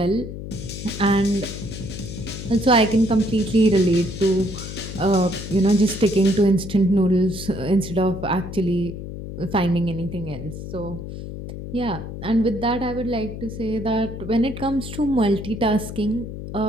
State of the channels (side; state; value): left; noise; hum, 9 dB below the sound